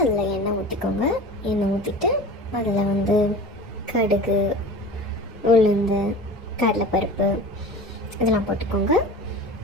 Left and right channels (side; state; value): both; normal; correlation 0.36